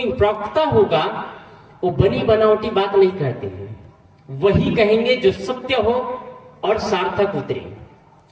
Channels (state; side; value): identical; both; correlation 1.00